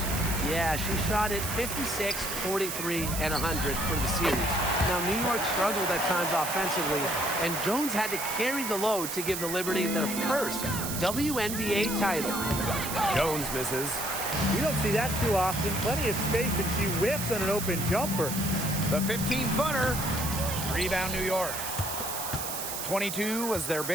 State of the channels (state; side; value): noise; right; hiss, 5 dB below the sound